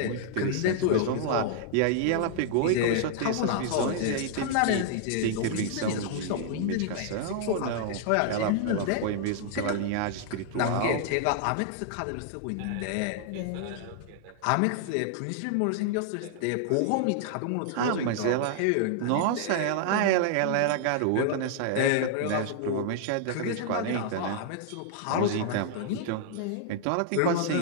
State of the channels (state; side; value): different; both; correlation 0.00